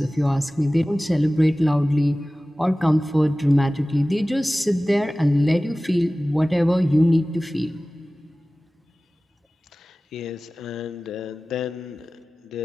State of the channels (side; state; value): both; normal; correlation 0.97